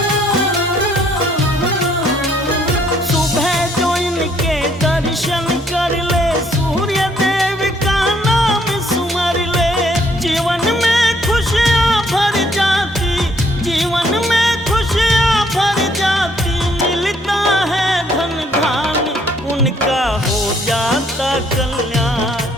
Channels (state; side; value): normal; both; correlation 0.66